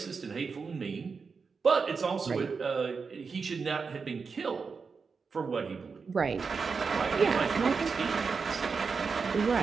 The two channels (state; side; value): quieter; left; 5.1 dB